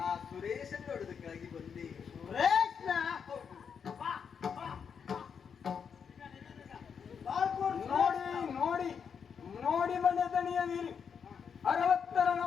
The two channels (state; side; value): quieter; right; 6.8 dB